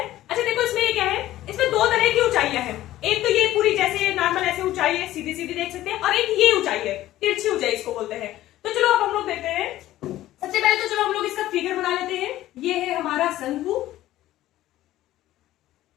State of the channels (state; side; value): quieter; right; 14.7 dB